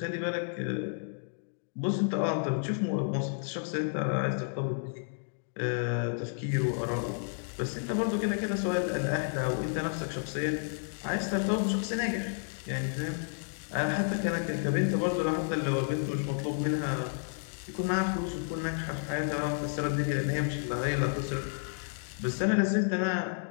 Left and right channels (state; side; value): silent; right; digital silence